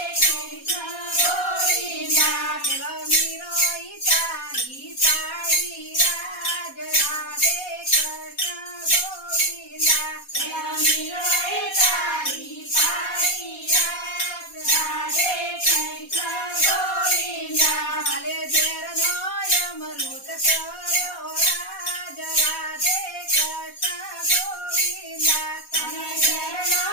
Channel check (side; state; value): right; late; 4.2 ms